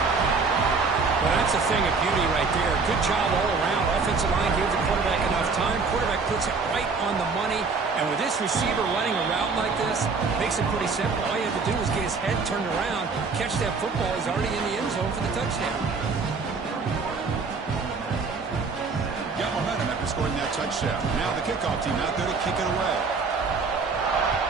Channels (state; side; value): quieter; left; 4.6 dB